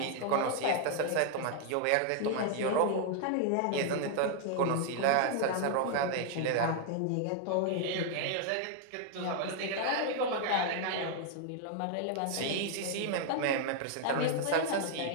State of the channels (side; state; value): both; different; correlation 0.00